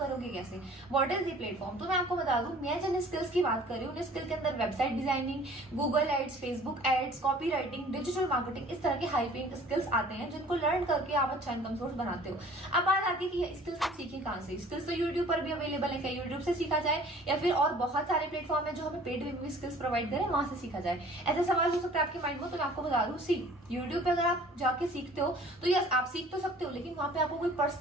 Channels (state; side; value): normal; both; correlation 0.50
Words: कैसे? What is the platform? तो मैं आपको बता दूं, मैं जिन स्किल्स की बात कर रही हूँ उन स्किल के अंदर website designing, Google ads, Facebook ads, copy writing, digital marketing, इस तरह के हाई पेइंग स्किल्स आते हैं जिनको लर्न करके आप अच्छा इनकम सोर्स बनाते हो। अब बात आती है कि ये स्किल्स आप सीखे कहाँ से? स्किल्स तो यूट्यूब पर भी अवेलेबल है, क्या यूट्यूब से सीखा जाए या फिर और बहुत सारे प्लेटफॉर्म है जो हमें पेड में भी स्किल्स प्रोवाइड करें, वहां से सीखा जाए? ऐसा सवाल हो सकता है आपके माइंड में, तो मैं आपको बता दूं, सी, यूट्यूब पे अगर आप जाके सीखते हो तो यस आप सीख तो सकते हो, लेकिन वहां पे आपको कोई